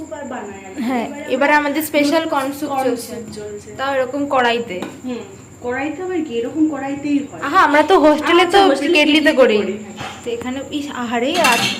আর বানাই। হ্যাঁ, এবারে আমাদের স্পেশাল কর্ন স্যুপ চলছে, চলছে। তাও এরকম কড়াইতে। কড়াইতে আবার কি এরকম কড়াইতেই হয়। আহা, আমরা তো হোস্টেলে তো হোস্টেলে কেটলিতে কেটলিতে করি। করি। তো এখানে ইস আহারে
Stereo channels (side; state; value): both; identical; correlation 1.00